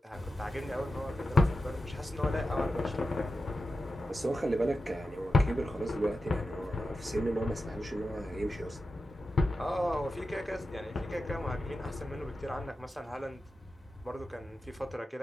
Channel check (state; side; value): normal; both; correlation 0.91